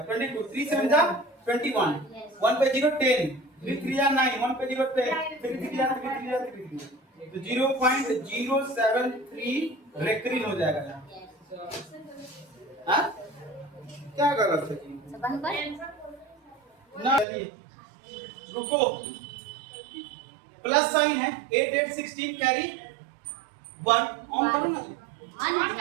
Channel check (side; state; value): left; drops out; at 17.2 s